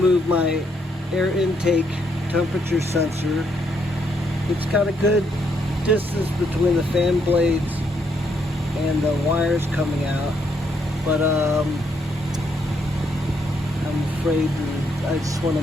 my air intake temperature sensor. It's got a good distance between the fan blades and the wires coming out, but I'm afraid I just want to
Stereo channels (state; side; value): normal; both; correlation 0.74